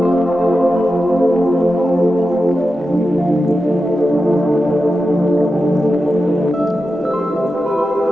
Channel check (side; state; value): both; normal; correlation 0.91